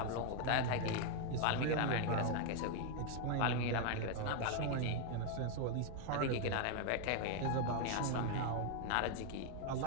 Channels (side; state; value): both; different; correlation 0.01